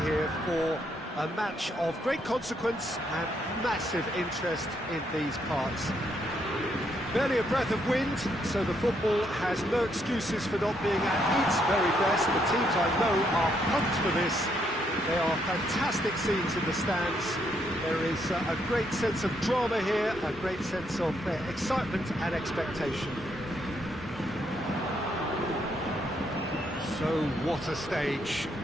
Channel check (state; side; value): normal; both; correlation 0.74